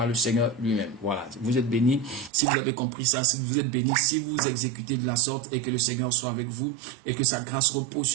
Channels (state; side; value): drops out; left; at 2.3 s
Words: le Seigneur lui-même. Voilà, vous êtes bénis si vous avez compris ça, si vous êtes bénis si vous exécutez de la sorte et que le Seigneur soit avec vous et que sa grâce repose